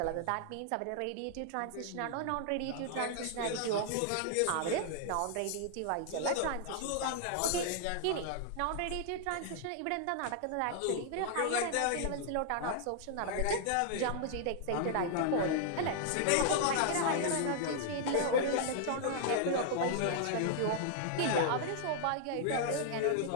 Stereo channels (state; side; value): different; both; correlation -0.01